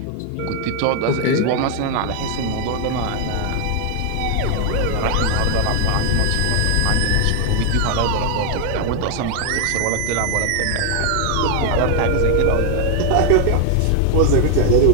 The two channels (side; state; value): both; different; correlation 0.00